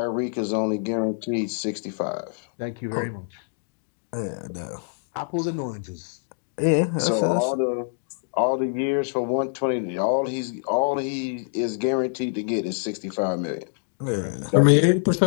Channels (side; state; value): right; silent; digital silence